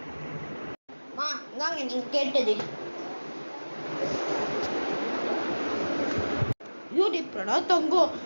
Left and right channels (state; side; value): inverted; both; correlation -1.00